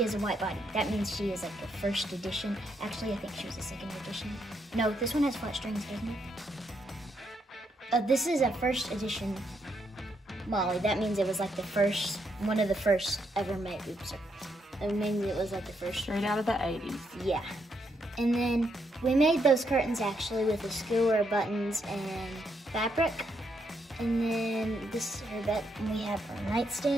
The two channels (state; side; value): normal; both; correlation 0.77